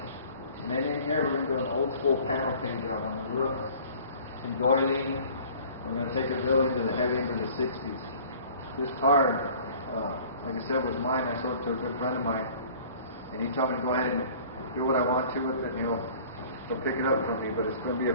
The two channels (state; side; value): inverted; both; correlation -0.49